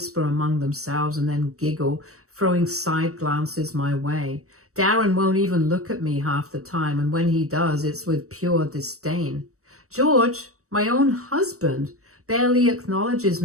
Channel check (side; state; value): left; late; 0.65 ms